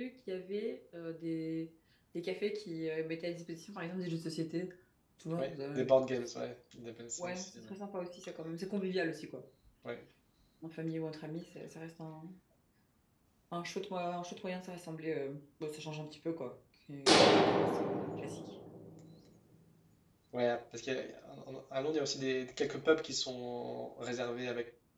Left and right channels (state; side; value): identical; both; correlation 1.00